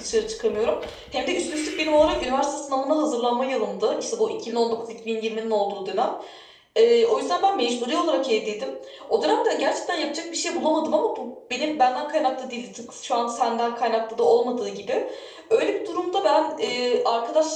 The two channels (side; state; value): both; identical; correlation 1.00